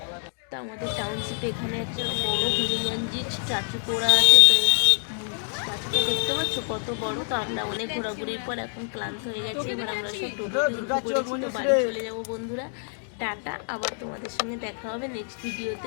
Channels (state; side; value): silent; right; 61 dB below the other